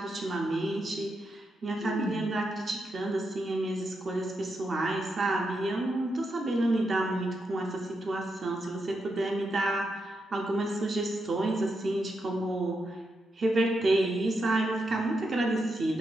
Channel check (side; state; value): both; normal; correlation 0.84